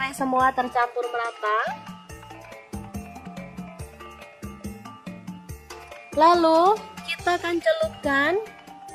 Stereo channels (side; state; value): both; identical; correlation 1.00